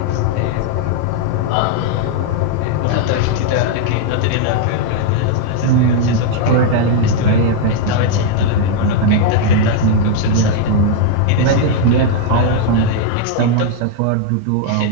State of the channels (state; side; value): different; both; correlation 0.00